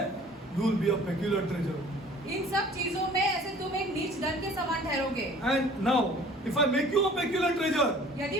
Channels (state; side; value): normal; both; correlation 0.50